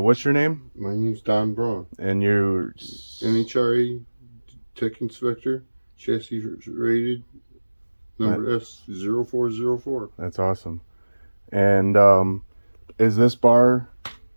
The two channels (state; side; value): inverted; both; correlation -1.00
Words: your name? My name's Don Braun. And you're NHRA Tech Inspector, chassis rated, number S0404. That's awesome. And is this bar